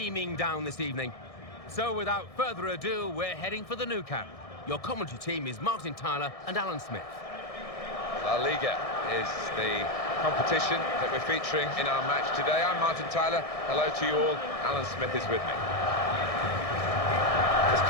down this evening. So without further ado, we're heading for the Nou Camp. Your commentary team is Martin Tyler and Alan Smith. La Liga is the competition that we're featuring in our match today. I'm Martin Tyler. Hello to you all. Alan Smith is with me. It's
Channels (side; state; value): right; late; 1.6 ms